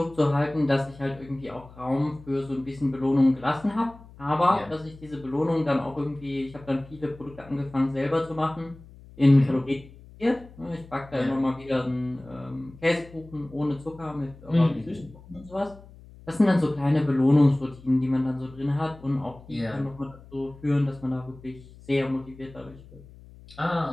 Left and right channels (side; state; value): left; noise; hum, 21 dB below the sound